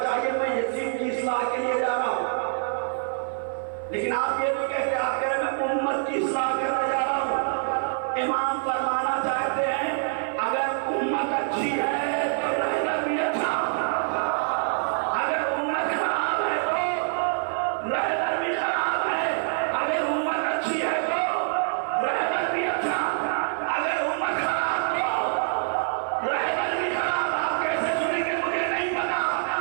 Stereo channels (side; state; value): left; silent; 57 dB below the other